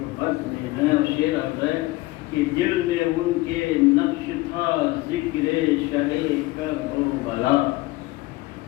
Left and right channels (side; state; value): right; quieter; 20.3 dB